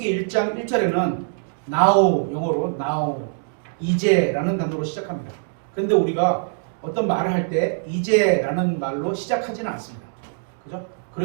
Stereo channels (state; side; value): silent; left; digital silence